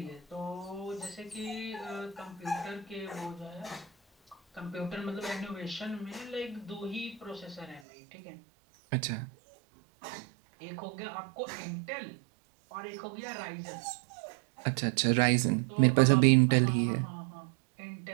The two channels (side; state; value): left; drops out; at 7.8 s